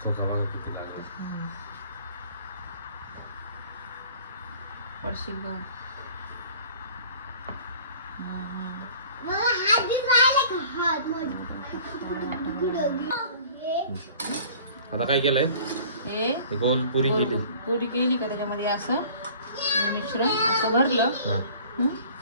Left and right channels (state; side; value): inverted; both; correlation -0.48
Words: चोखा बघा किती लागला. पडशील बघ. आता काय केलंय? हे गोल पुरी केली. पुरी केली का त्याच्यामध्ये असं हे मिश्रण असं भरलं. हा, हं?